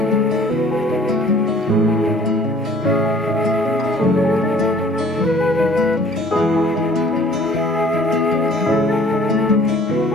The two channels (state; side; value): normal; both; correlation 0.54